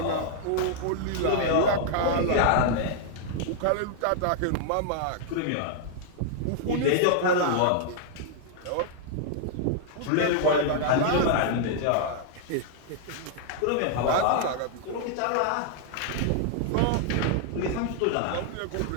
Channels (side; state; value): both; different; correlation -0.01